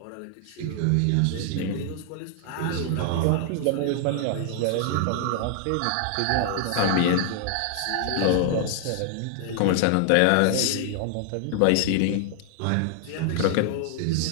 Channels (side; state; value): both; different; correlation 0.00